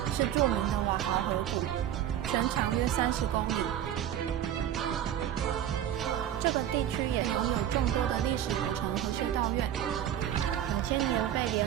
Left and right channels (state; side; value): quieter; left; 10.8 dB